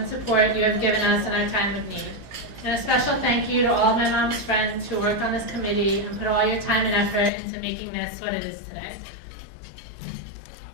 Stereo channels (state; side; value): drops out; right; at 7.3 s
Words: support you have given us in our time of need. And a special thank you to all my mom's friends who worked on this committee and put all your time and effort into making this what it is today.